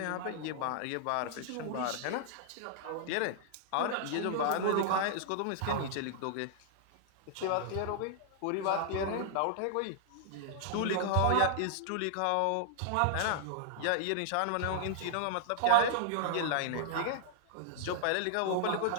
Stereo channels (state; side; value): different; both; correlation -0.01